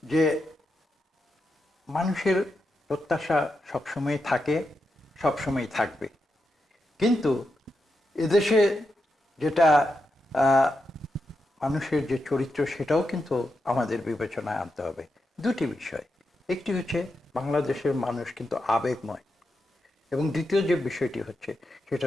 যে মানুষের প্রত্যাশা সবসময় থাকে, সবসময় থাকবে। কিন্তু এদেশে যেটা মানুষের যে চরিত্র, সেটাও কিন্তু আমাদের বিবেচনায় আনতে হবে। দুটি বিষয়, একটি হচ্ছে বাংলাদেশের মানুষ কিন্তু আবেগময়, এবং দ্বিতীয় যে বিষয়টি হচ্ছে সেটা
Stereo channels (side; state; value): both; normal; correlation 0.86